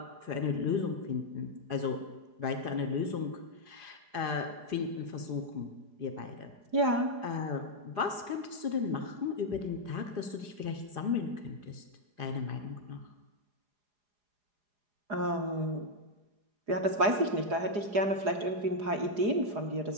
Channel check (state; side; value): late; left; 4.9 ms